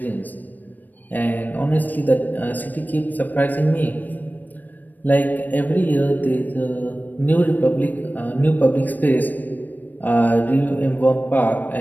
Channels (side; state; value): right; late; 0.087 ms